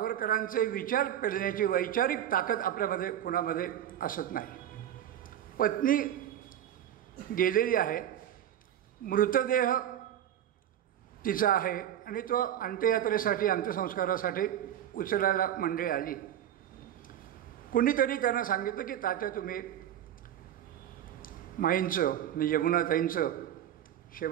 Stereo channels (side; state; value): left; quieter; 10.9 dB